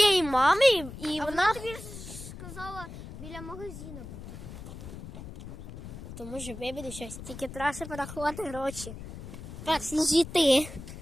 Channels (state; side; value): noise; left; rumble, 12 dB below the sound